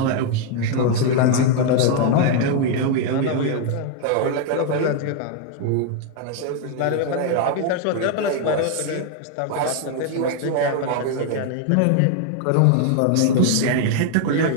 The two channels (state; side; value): different; both; correlation 0.00